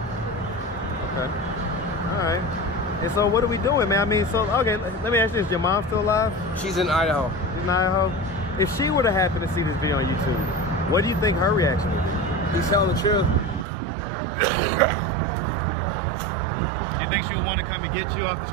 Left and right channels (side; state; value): left; drops out; at 13.7 s